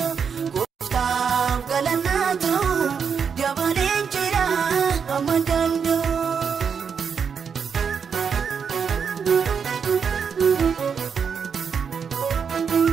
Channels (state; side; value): quieter; left; 6.6 dB